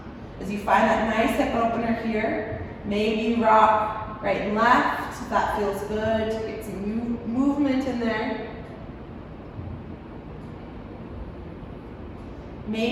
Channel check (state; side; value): identical; both; correlation 1.00